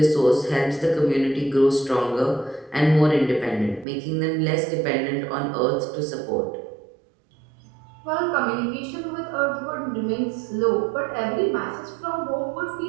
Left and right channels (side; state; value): left; drops out; at 3.9 s